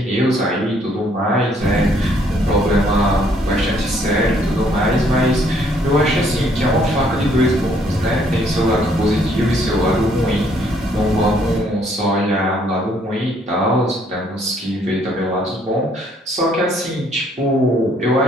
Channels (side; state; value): both; normal; correlation 0.66